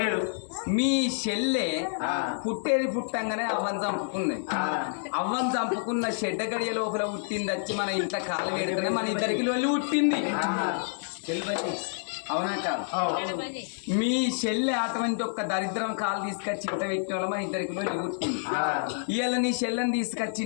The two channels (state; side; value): silent; right; digital silence